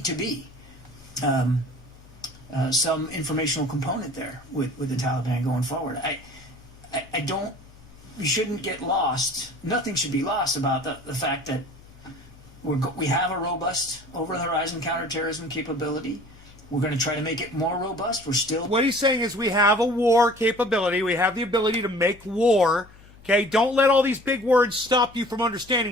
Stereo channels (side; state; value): left; noise; hum, 23 dB below the sound